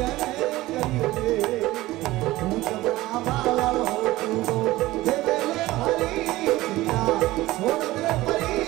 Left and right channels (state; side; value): quieter; left; 17.8 dB